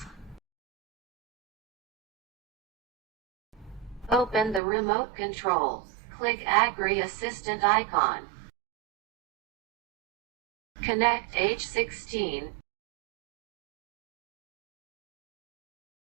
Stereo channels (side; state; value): left; drops out; at 4.6 s